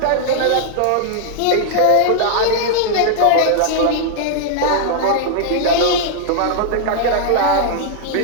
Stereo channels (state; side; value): different; both; correlation -0.01